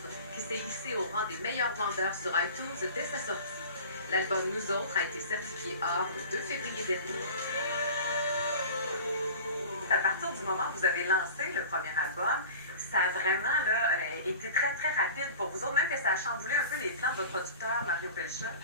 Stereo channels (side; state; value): both; inverted; correlation -0.38